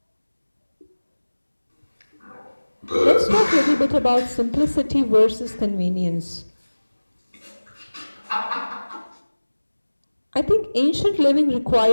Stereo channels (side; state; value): both; inverted; correlation -1.00